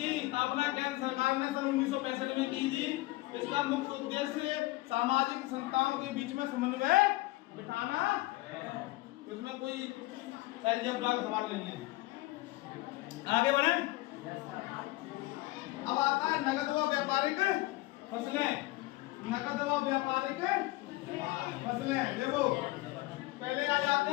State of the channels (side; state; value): right; quieter; 19.8 dB